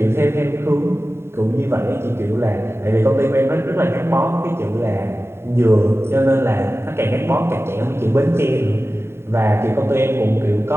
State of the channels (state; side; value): late; left; 0.12 ms